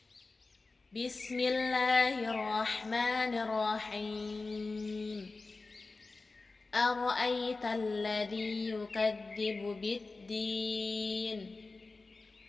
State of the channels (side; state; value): right; quieter; 3.7 dB